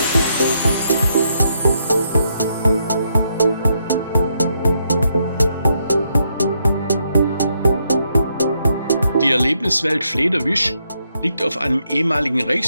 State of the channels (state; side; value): inverted; both; correlation -0.77